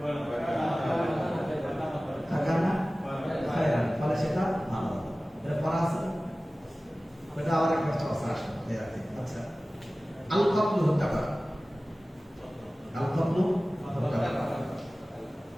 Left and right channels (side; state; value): both; normal; correlation 0.97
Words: হাকানা খায়রা, ফলে সেটা ভালো হলো। এটা পড়া আছে, এটা আবার একটা চর্চা আসবে। আচ্ছা, আল কতলু হত্যা করা, আল কতলু হত্যা করা,